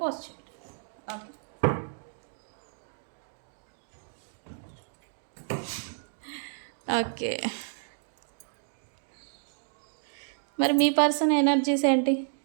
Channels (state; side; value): silent; left; digital silence